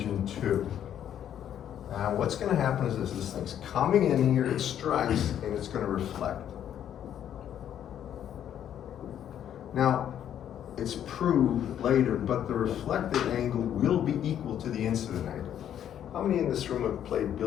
2. Now what's going to happen is this thing's coming in here, it strikes, and it's going to reflect. Now, it's proved later, but the reflected angle will be equal to the incident angle. How many in this room have played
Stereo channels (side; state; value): right; quieter; 10.1 dB